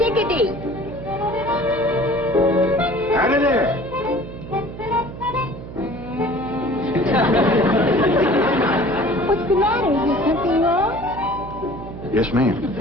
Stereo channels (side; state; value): right; noise; hum, 12 dB below the sound